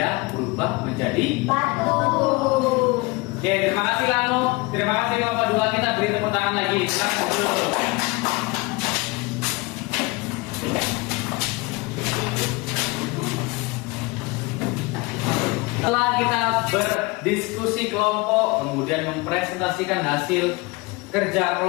berubah menjadi. Batu. Oke, terima kasih Lano. Terima kasih kelompok 2. Kita beri tepuk tangan lagi. Silakan dulu. Setelah kita berdiskusi kelompok, kemudian mempresentasikan hasil kerja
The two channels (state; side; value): quieter; right; 24.7 dB